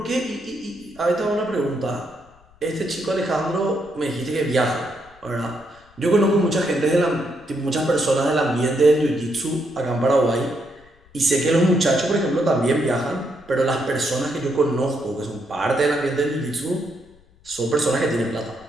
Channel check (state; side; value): noise; left; rumble, 28 dB below the sound